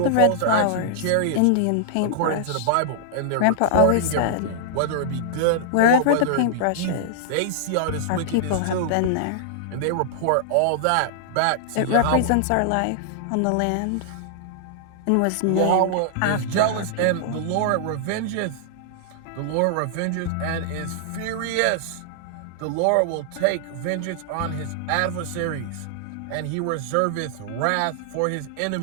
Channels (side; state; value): both; different; correlation -0.01